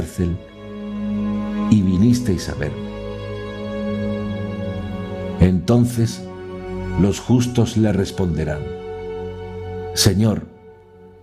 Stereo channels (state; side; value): identical; both; correlation 1.00